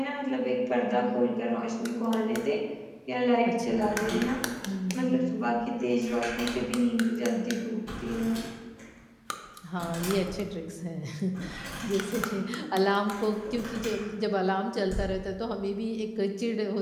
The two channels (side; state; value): both; identical; correlation 1.00